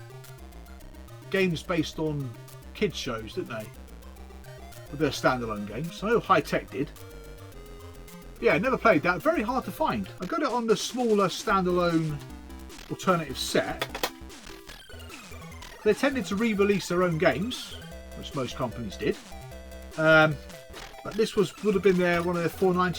games based on kids shows, didn't they? With their standalone games. I know High Tech did. Yeah, never played that. Very hard to find. I got it on the smaller standalone Alternative set. They tended to re-release their own games, which most companies did. But this would have been one of their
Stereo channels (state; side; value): identical; both; correlation 1.00